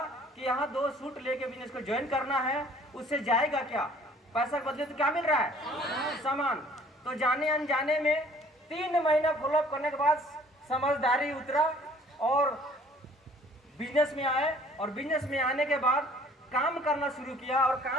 कि यहाँ 2 सूट लेके बिजनेस को ज्वाइन करना है। उससे जाएगा क्या? पैसा के बदले तो क्या मिल रहा है? सामान। तो जाने अनजाने में 3 महीना फॉलो करने के बाद समझदारी उतरा और बिजनेस में आए। और बिजनेस में आने के बाद काम करना शुरू किया। और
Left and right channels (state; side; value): normal; both; correlation 0.55